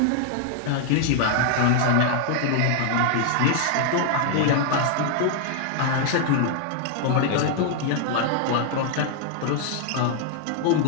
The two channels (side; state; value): both; different; correlation 0.00